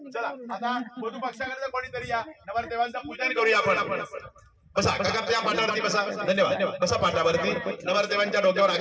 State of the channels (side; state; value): both; identical; correlation 1.00